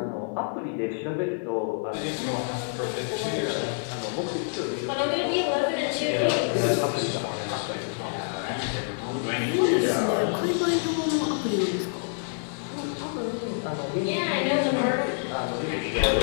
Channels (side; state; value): right; silent; digital silence